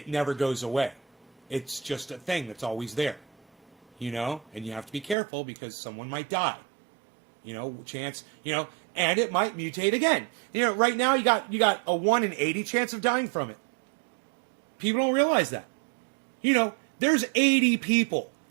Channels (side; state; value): left; drops out; at 5.2 s